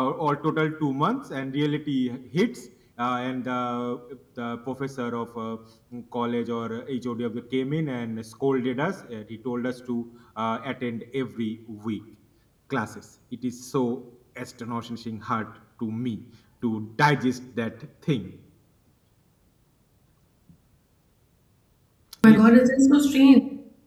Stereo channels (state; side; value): identical; both; correlation 1.00